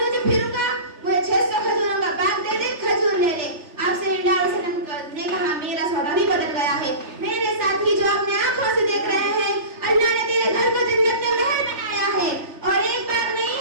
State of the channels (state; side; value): late; left; 3.4 ms